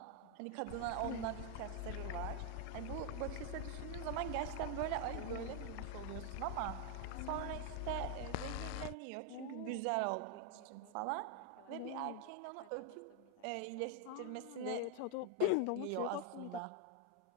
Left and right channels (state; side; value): different; both; correlation 0.00